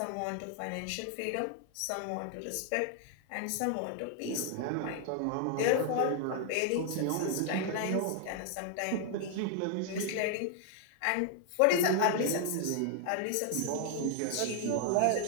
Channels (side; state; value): both; different; correlation 0.00